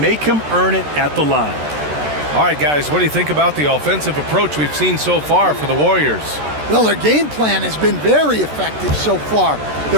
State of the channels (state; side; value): late; left; 13 ms